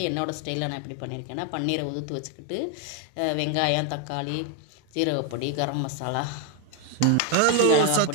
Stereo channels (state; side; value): different; both; correlation 0.01